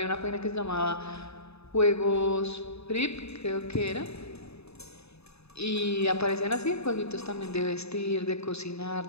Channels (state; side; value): late; right; 0.79 ms